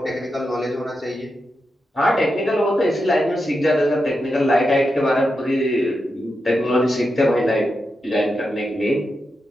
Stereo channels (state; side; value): normal; both; correlation 0.87